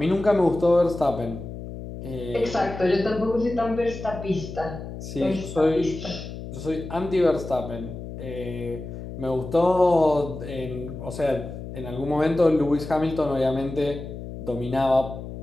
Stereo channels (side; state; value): left; noise; hum, 10 dB below the sound